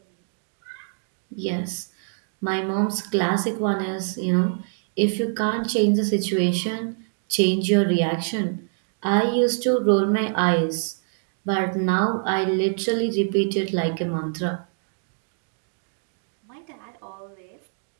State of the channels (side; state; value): left; silent; digital silence